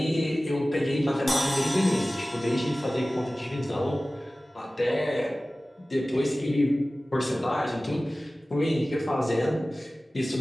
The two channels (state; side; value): normal; both; correlation 0.97